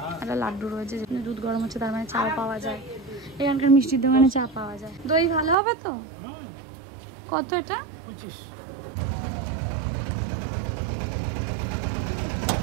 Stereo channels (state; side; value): drops out; left; at 5.6 s